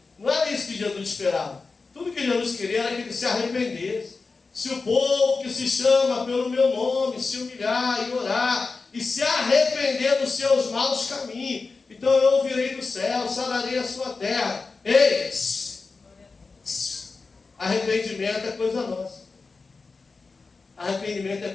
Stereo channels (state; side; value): quieter; right; 4.2 dB